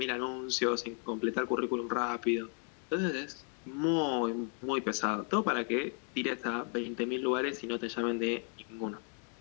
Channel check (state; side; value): quieter; right; 39.9 dB